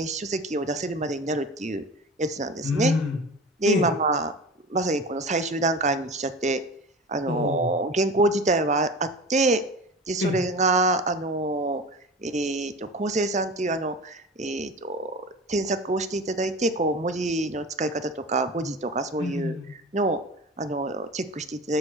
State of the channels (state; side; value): normal; both; correlation 0.33